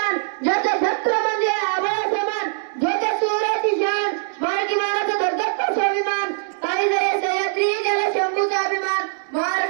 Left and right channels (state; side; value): silent; left; 64 dB below the other